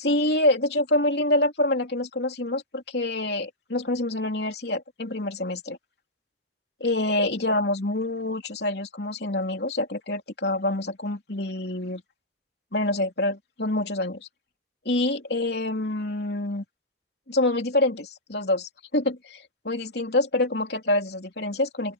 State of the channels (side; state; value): both; normal; correlation -0.10